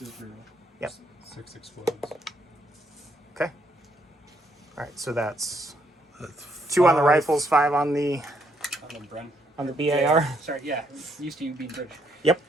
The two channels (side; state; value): both; normal; correlation 0.72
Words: for. Yep. 6 explodes. Okay. All right, so that's That's 2 on the 5. rifles, 5 on the Bren. BAR. Sorry, yeah. Used to you being British. Yep.